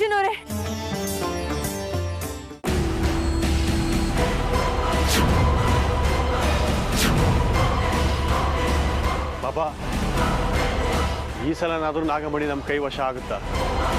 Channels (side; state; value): both; identical; correlation 1.00